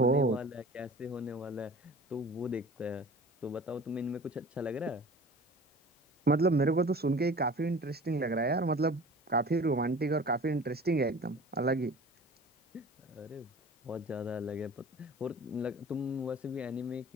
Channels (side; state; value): both; normal; correlation 0.42